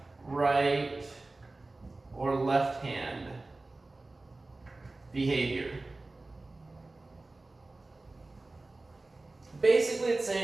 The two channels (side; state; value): left; quieter; 3.1 dB